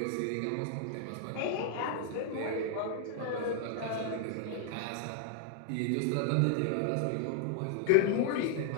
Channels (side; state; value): both; different; correlation 0.00